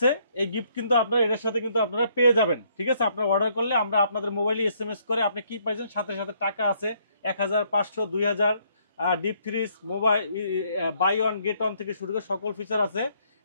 এই গিফট কিন্তু আপনারা এর সাথে কিন্তু আপনারা পেয়ে যাবেন। ঠিক আছে, আপনারা অর্ডার করলে আমরা আপনাদের মোবাইলে SMS করে আপনি কি পাইছেন, সাথে সাথে টাকা আছে 1000, 500, 2000, deep freeze, mobile, buy one get one থেকে শুরু করে সকল ফিচার আছে।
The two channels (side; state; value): both; inverted; correlation -0.69